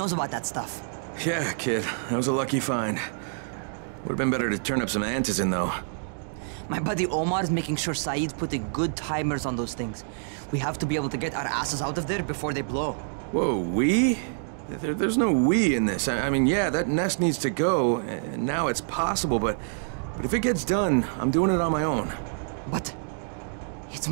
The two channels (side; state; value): left; silent; digital silence